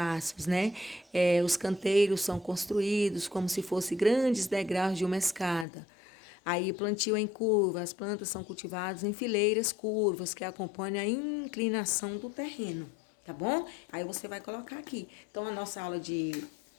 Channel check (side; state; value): right; drops out; at 5.7 s